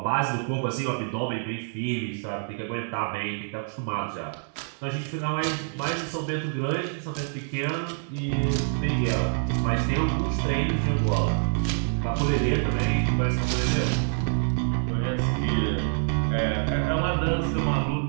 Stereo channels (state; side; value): silent; left; 61 dB below the other